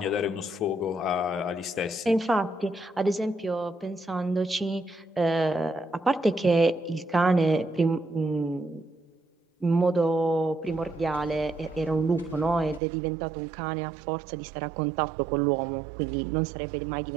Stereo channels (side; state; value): left; drops out; at 12.8 s